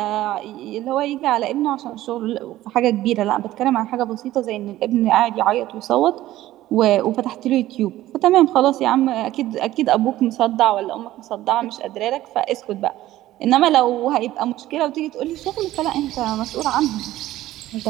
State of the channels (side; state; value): left; quieter; 15.0 dB